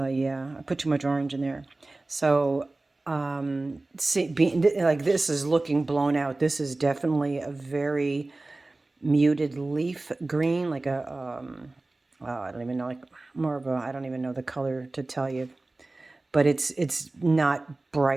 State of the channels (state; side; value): quieter; left; 3.1 dB